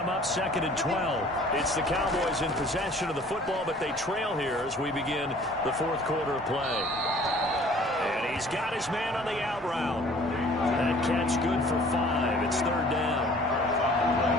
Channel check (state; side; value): normal; both; correlation 0.52